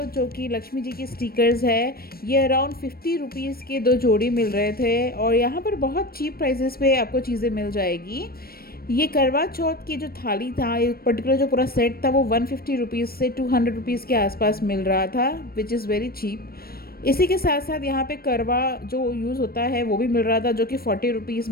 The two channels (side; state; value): right; late; 0.44 ms